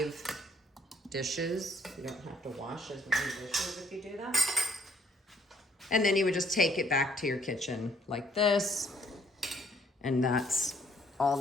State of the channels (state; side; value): normal; both; correlation 0.65